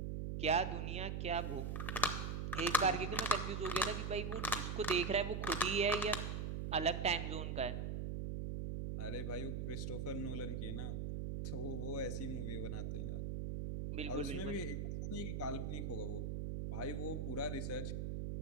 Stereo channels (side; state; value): right; noise; hum, 2 dB below the sound